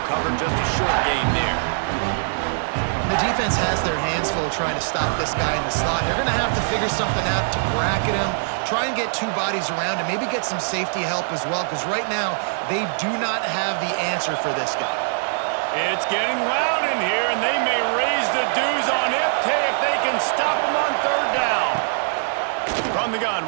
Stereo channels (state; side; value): silent; left; digital silence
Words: covered, just a short gain there. The defense has their hands full trying to stop this guy in the slot. They're going to have to figure something out to bracket him, try and get 2 bodies around him, maybe get some safety help as well, because right now they do not have the answer for this guy. It's getting loud in here, and they may raise the dues on Ipte if they can stop him on third down. From the gun,